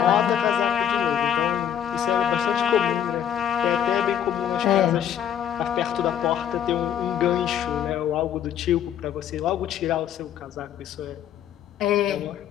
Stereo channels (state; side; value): quieter; right; 9.6 dB